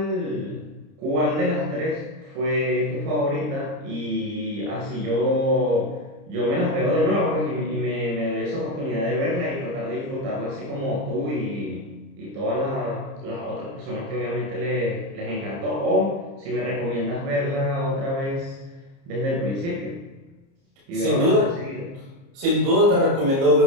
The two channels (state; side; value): late; left; 30 ms